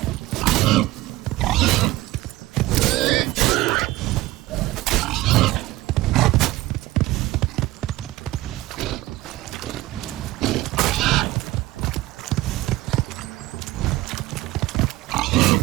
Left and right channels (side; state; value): left; quieter; 17.9 dB